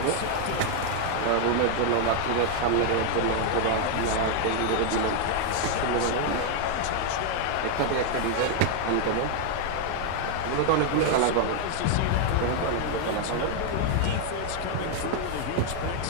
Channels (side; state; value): both; different; correlation 0.00